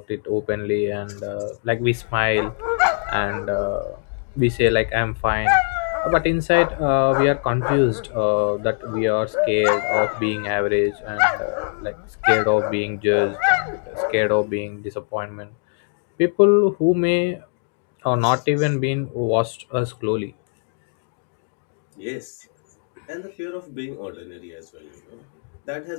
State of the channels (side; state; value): right; silent; digital silence